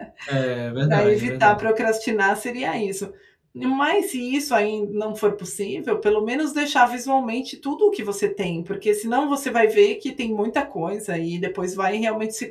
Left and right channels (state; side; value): identical; both; correlation 1.00